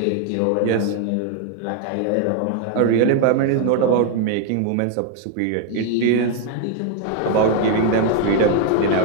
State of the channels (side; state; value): both; different; correlation 0.01